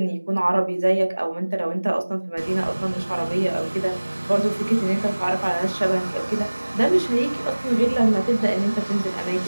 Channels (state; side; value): inverted; both; correlation -1.00